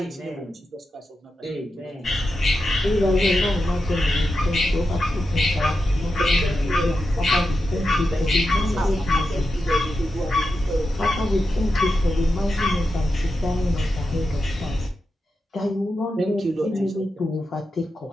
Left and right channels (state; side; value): normal; both; correlation 0.89